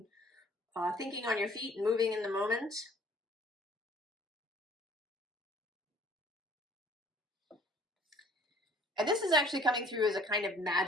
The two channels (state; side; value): normal; both; correlation 0.55